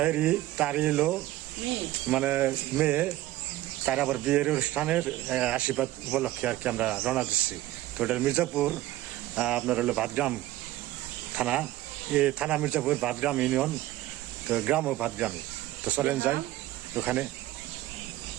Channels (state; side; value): quieter; left; 15.8 dB